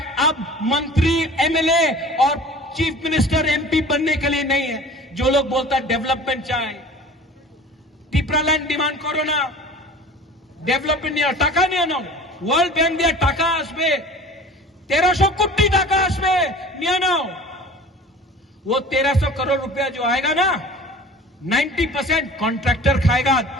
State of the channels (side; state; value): both; normal; correlation 0.42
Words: अब मंत्री, एमएलए और चीफ मिनिस्टर, एमपी बनने के लिए नहीं है। जो लोग बोलता है डेवलपमेंट चाहे, टिप्रालैंड डिमांड करो ना, डेवलपमेंट नहीं, टाका नहीं आना, वर्ल्ड बैंक दिया टाका आसबे, 1300 कोटी टाका आसबे नहीं आना। वो 1300 करोड़ रुपया जो आएगा ना, 90% कॉन्ट्रैक्टर खाएगा,